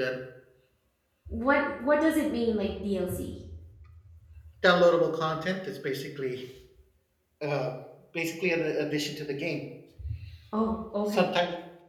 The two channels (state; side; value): identical; both; correlation 1.00